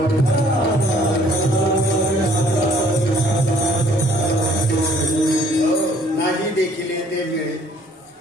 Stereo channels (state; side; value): normal; both; correlation 0.59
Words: नाही देखील ते मिळे